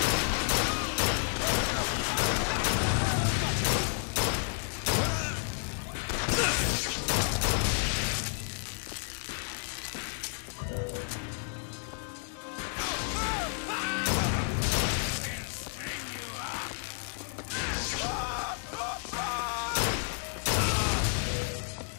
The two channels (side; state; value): right; silent; 57 dB below the other